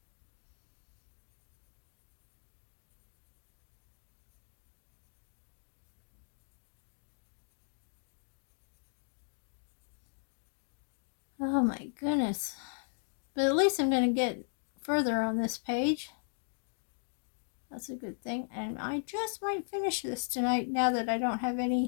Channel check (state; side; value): silent; right; digital silence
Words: Oh my goodness. But at least I'm going to get further on this page. That's a good thing. And I just might finish this tonight now that I don't have